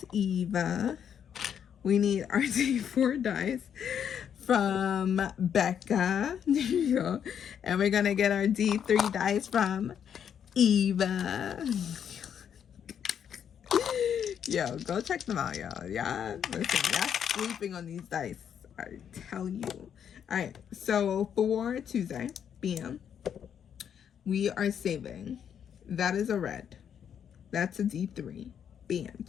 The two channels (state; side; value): quieter; right; 8.4 dB